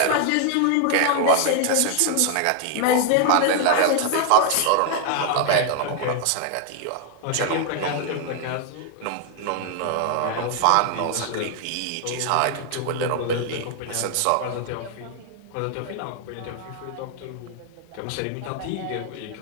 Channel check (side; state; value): both; different; correlation 0.00